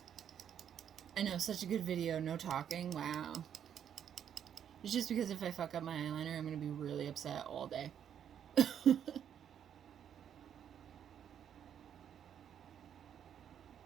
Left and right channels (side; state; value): left; quieter; 9.0 dB